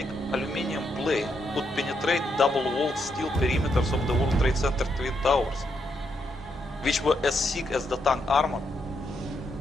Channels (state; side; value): normal; both; correlation 0.79